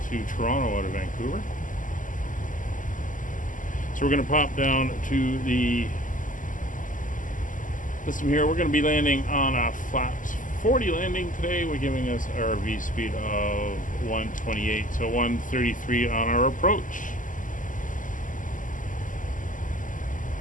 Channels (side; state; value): right; late; 0.38 ms